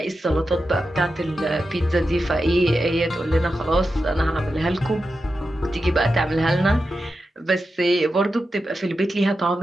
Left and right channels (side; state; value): both; normal; correlation 0.90